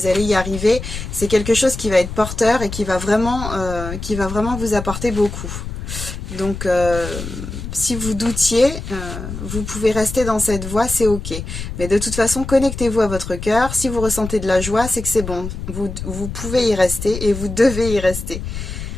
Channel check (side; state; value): left; noise; rumble, 8 dB below the sound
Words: allez y arriver. C'est quelque chose qui va être porteur et qui va vraiment vous apporter beaucoup. Donc si vous doutiez, vous pouvez rester dans cette voie, c'est ok. Mais de toute façon, connectez-vous à votre cœur. Si vous ressentez de la joie, c'est que c'est bon. Vous pouvez y rester et vous devez y rester.